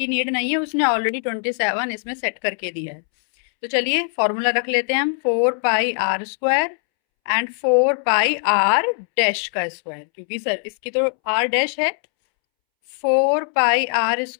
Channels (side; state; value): right; silent; 65 dB below the other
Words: नीड नहीं है, उसने ऑलरेडी 27 इसमें सेट करके दिया है। तो चलिए फॉर्मूला रख लेते हैं हम, 4 pi r square and 4 pi r dash का स्क्वायर, क्योंकि सर इसकी तो आर डैश है। 4 pi r